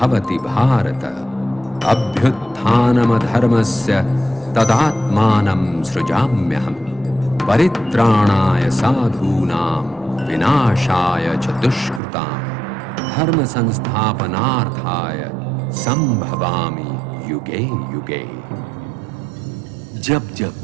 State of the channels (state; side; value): drops out; left; at 12.0 s